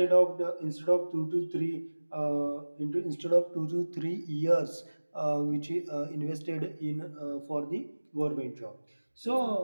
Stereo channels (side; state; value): both; inverted; correlation -1.00